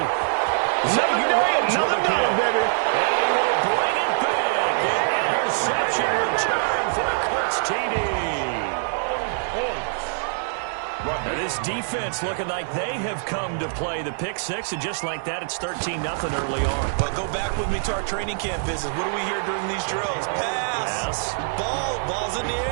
Another day, another dollar, baby. And he will bring it back. defense looking like they have come to play. The pick six, and just like that, it's 13-0 early on. But go back with me to our training camp visits. What do we hear during these drills? Pass. Ball's in the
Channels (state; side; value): silent; left; 62 dB below the other